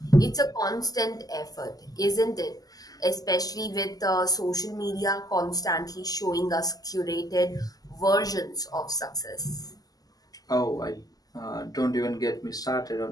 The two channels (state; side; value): late; right; 0.18 ms